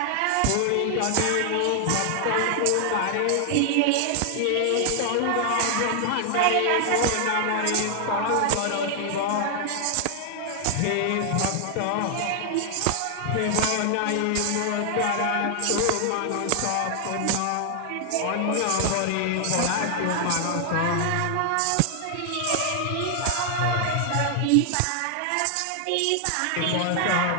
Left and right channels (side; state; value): both; different; correlation 0.00